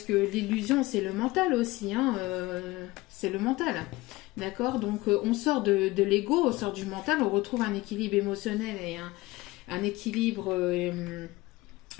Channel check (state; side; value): quieter; right; 20.0 dB